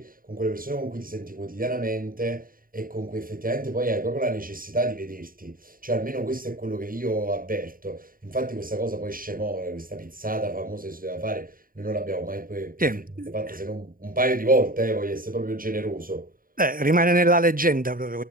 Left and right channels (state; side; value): late; left; 0.41 ms